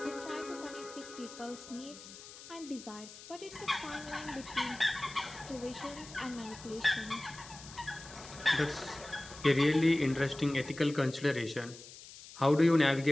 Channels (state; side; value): noise; left; hiss, 16 dB below the sound